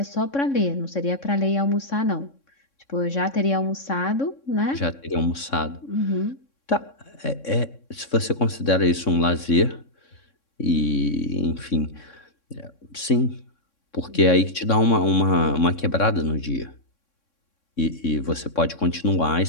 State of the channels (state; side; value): late; right; 3.6 ms